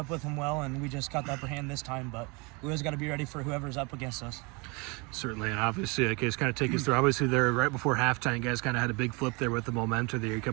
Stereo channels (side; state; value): left; quieter; 28.9 dB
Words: with them well, and we just got the upper hand this time. But we always got to be ready for whoever's up against us. Certainly, and obviously, Case, kind of take us through. Obviously, there right before halftime, you guys kind of had a big flip there with the momentum there. You come